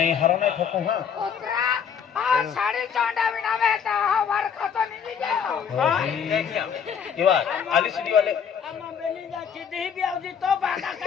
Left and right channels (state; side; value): quieter; right; 7.4 dB